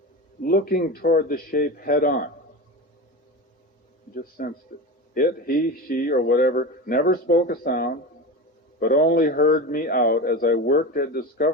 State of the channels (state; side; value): normal; both; correlation 0.25